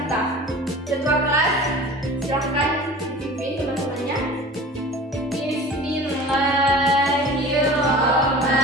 Ketua kelas, silahkan dipimpin teman-temannya.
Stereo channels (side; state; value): both; normal; correlation 0.40